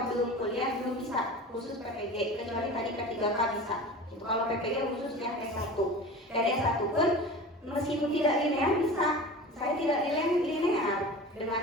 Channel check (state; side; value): normal; both; correlation 0.35